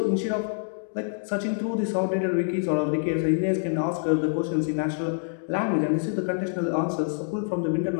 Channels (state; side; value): silent; right; digital silence